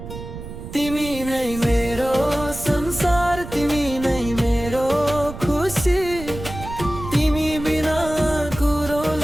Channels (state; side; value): noise; right; rumble, 11 dB below the sound